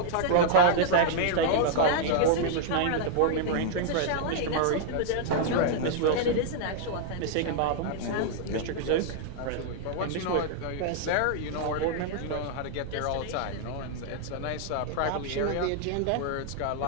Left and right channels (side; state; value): both; different; correlation -0.01